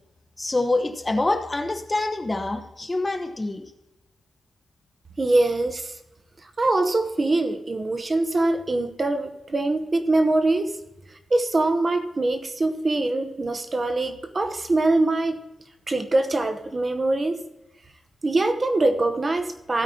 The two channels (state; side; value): normal; both; correlation 0.95